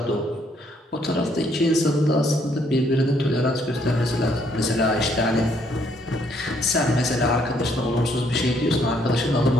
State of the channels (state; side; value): normal; both; correlation 0.69